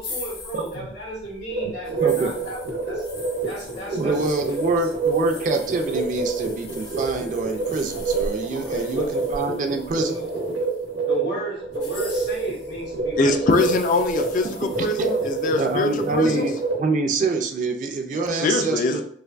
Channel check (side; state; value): both; normal; correlation 0.37